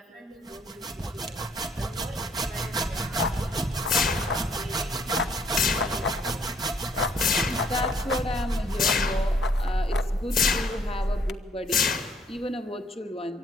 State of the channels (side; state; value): both; normal; correlation 0.65